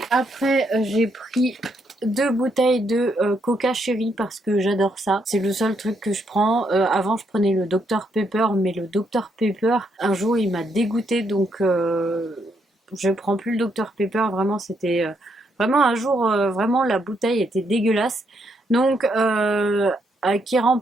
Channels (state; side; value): normal; both; correlation 0.76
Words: Après j'ai pris 2 bouteilles de Coca Cherry parce que j'adore ça. C'est le seul truc que je prends. Avant je prenais le Dr Pepper, mais le Dr Pepper un jour il m'a dégoûté, donc je prends plus le Dr Pepper. Vraiment c'était vraiment un jour vraiment la bouteille était dégueulasse. Donc qui